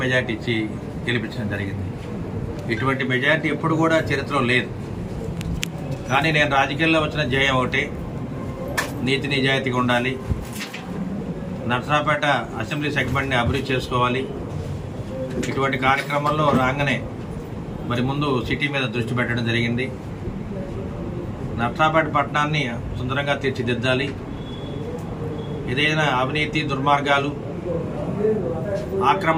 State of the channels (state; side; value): identical; both; correlation 1.00